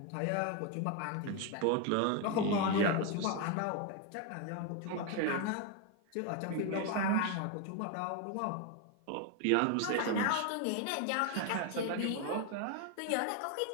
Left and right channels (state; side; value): different; both; correlation 0.01